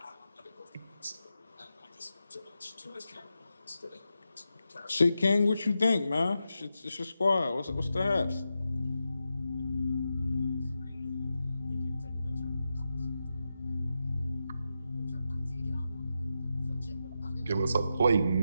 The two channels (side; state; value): both; inverted; correlation -0.88